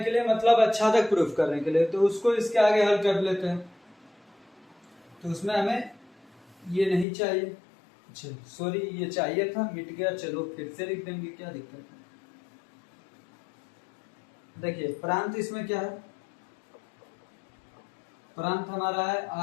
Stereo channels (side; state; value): right; drops out; at 7.1 s